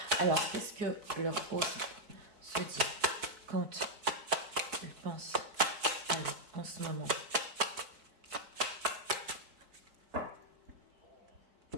Alors, qu'est-ce que leur autre se dit quand ils pensent à vous en ce moment?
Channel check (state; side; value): late; left; 4.5 ms